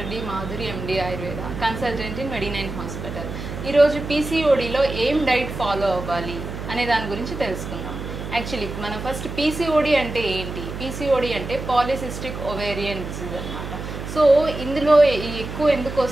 D Madhuri, MD Ayurveda, consultant in మెడి9 హాస్పిటల్. ఈరోజు పీసీఓడిలో ఏం డైట్ ఫాలో అవ్వాలి అనే దాని గురించి తెలుసుకుందాం. యాక్చువల్లీ మన ఫస్ట్ పీసీఓడి అంటే ఏంటి? పీసీఓడి అంటే పాలిసిస్టిక్ ఓవేరియన్ డిసీజ్ అన్నమాట. సో ఇందులో ఎక్కువ ఎందుకు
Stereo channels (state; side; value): noise; right; hum, 8 dB below the sound